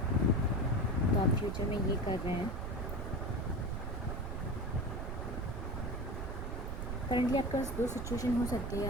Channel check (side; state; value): right; noise; rumble, 4 dB below the sound